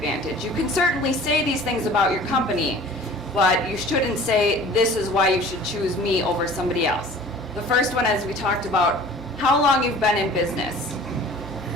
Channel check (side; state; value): both; normal; correlation 0.45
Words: You can certainly say these things about your company, but you shouldn't say, this is why you should choose me over somebody else. The first one, as we talked about, how long you've been in business.